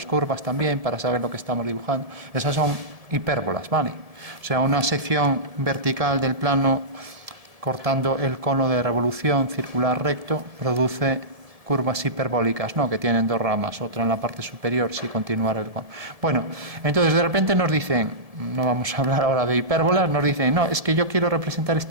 curvas también para saber lo que estamos dibujando. Esas son hipérbolas, ¿vale? O sea, una sección vertical del plano cortando el cono de revolución circular recto produce curvas hiperbólicas, ¿no? Que tienen dos ramas, otra en la parte superior, si continuara el... Bueno, entonces de repente nos dicen, no vamos a hablar ahora de hipérbolas, nos dicen, no, es que yo quiero representar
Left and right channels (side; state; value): left; late; 1.7 ms